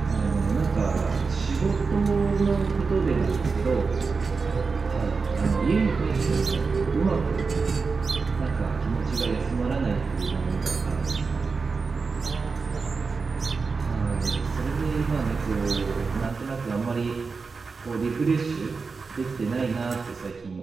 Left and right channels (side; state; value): left; quieter; 4.6 dB